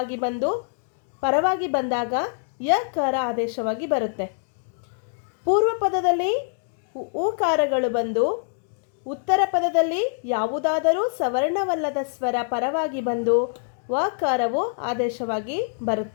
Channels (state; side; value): silent; right; digital silence